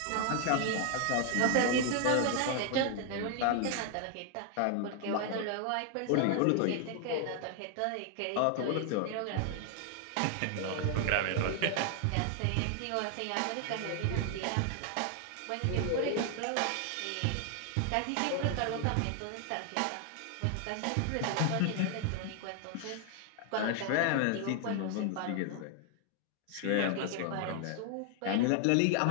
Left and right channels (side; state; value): both; different; correlation 0.00